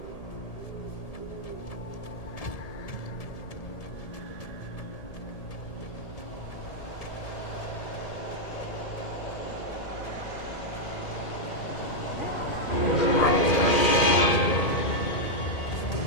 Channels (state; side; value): late; right; 1.7 ms